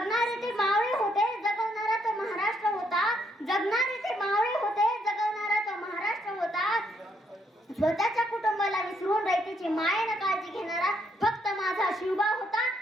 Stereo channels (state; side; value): normal; both; correlation 0.73